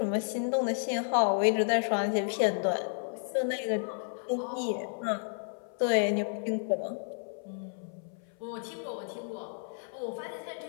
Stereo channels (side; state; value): right; silent; 57 dB below the other